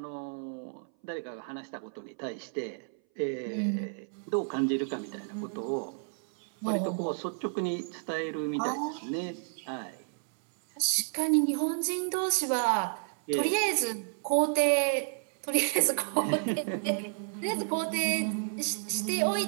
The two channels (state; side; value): silent; left; 57 dB below the other